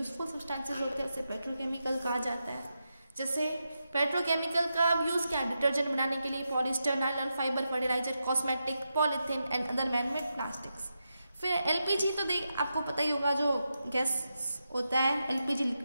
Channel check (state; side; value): inverted; both; correlation -0.87